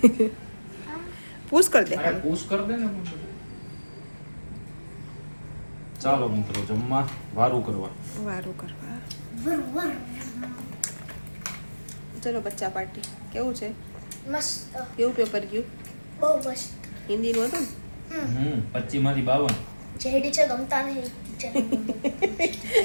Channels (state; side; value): inverted; both; correlation -1.00